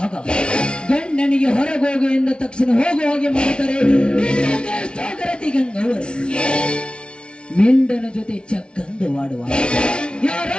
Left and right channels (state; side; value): late; right; 0.057 ms